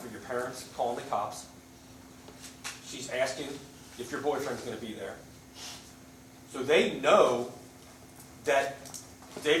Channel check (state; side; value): identical; both; correlation 1.00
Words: your parents calling the cops. She's asking if your boyfriend's going to be there. So they know that